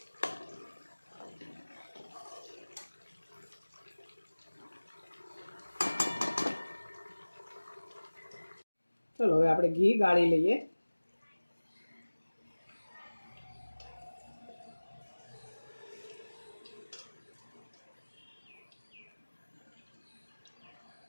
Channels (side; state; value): both; inverted; correlation -1.00